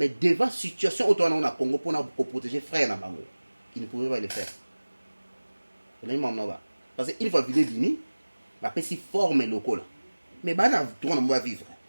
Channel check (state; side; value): inverted; both; correlation -1.00